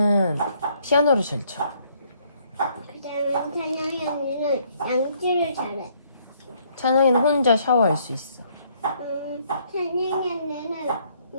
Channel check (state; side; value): inverted; both; correlation -0.66